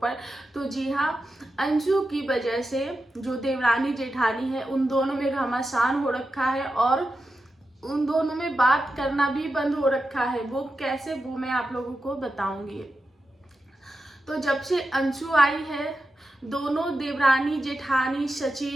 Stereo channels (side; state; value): both; normal; correlation 0.90